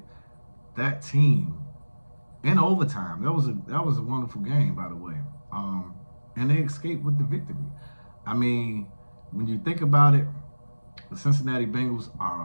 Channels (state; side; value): inverted; both; correlation -1.00